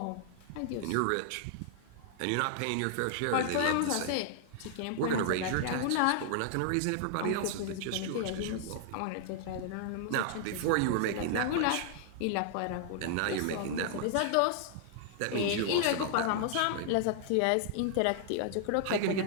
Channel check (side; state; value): both; different; correlation -0.01